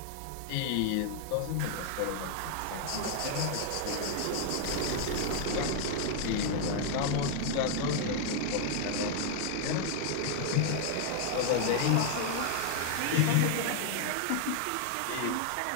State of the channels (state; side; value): different; both; correlation 0.00